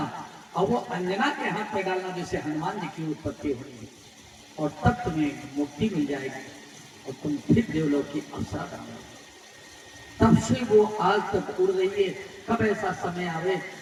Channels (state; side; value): identical; both; correlation 1.00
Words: और वो अंजना के हाथ में डालना, जैसे हनुमान जी की उत्पत्ति हो रही है, और तब तुम्हें मुक्ति मिल जाएगी और तुम फिर देवलोक की अप्सरा बन। तब से वो आज तक उड़ रही है। कब ऐसा समय आवे